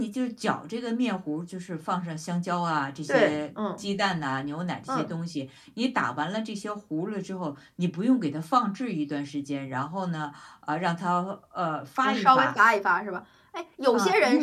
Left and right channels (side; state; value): both; identical; correlation 1.00